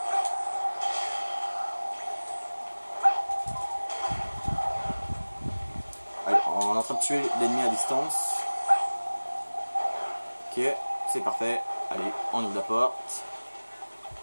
Allez, on est en train de tuer l'ennemi à distance. Ok, c'est parfait. Allez, on ouvre la porte.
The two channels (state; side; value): inverted; both; correlation -1.00